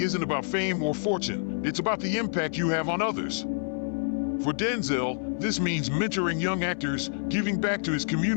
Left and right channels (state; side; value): silent; right; 60 dB below the other